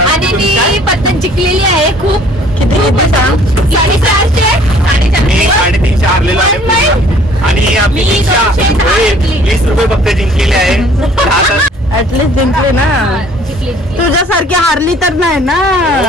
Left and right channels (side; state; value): both; normal; correlation 0.55